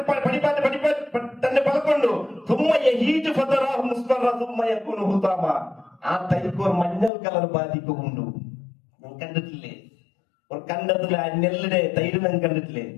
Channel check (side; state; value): right; drops out; at 7.1 s